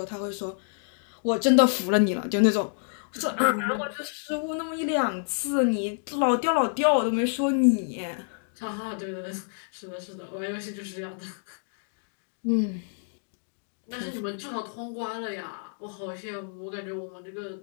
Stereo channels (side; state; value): right; silent; digital silence